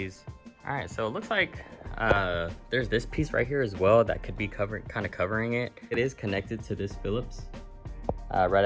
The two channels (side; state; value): both; identical; correlation 1.00